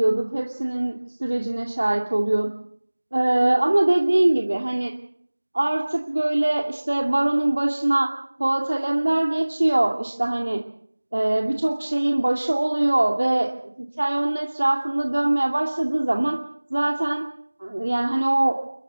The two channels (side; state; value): both; inverted; correlation -1.00